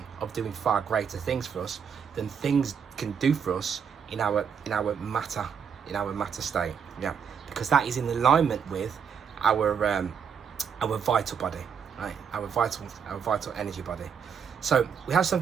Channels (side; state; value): left; quieter; 7.1 dB